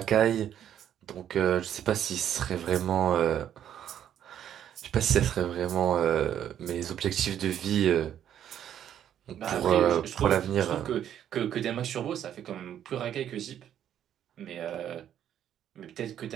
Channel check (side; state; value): left; quieter; 10.2 dB